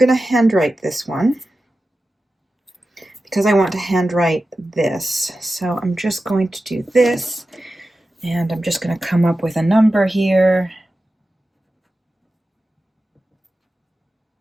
to handwrite this one because I want to handwrite this. So I'm just going to do this, and I'm just going to come up with a number here.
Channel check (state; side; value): normal; both; correlation 0.93